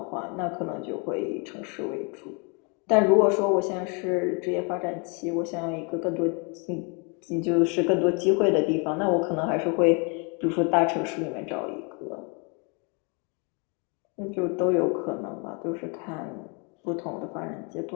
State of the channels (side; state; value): right; quieter; 34.5 dB